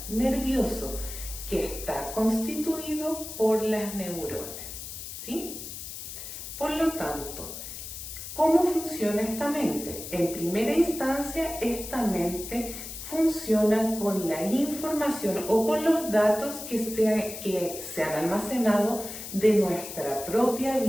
nervioso, que está constituido por las neuronas, ¿sí? Por lo tanto, ¿cómo funciona esta mente? En primera instancia, esta mente funciona con la información o con los datos que se han almacenado de nuestra propia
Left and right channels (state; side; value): noise; left; hiss, 10 dB below the sound